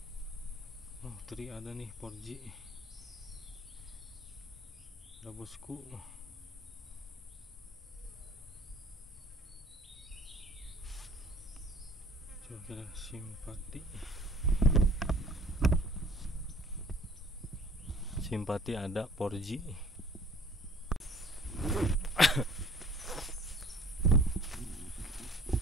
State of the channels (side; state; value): both; normal; correlation 0.52